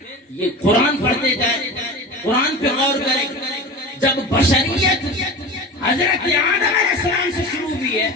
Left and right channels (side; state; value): both; normal; correlation 0.31